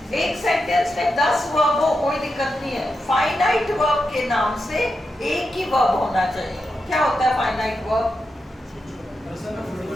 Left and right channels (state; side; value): normal; both; correlation 0.87